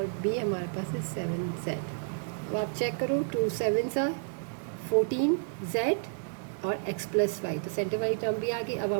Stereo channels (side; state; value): left; silent; digital silence